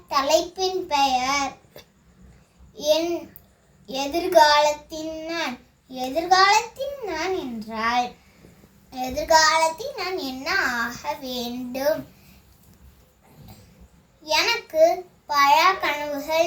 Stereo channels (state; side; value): identical; both; correlation 1.00